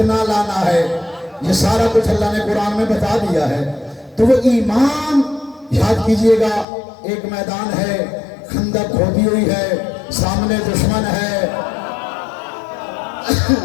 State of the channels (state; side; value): drops out; right; at 6.7 s